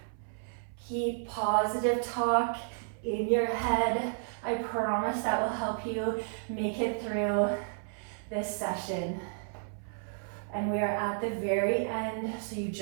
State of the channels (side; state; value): left; silent; 56 dB below the other